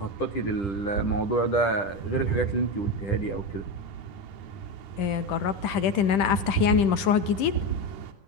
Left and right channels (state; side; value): late; right; 10 ms